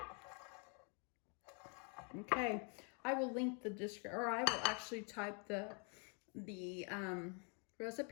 Okay, I will link the description, or I will actually type the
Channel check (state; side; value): quieter; right; 37.8 dB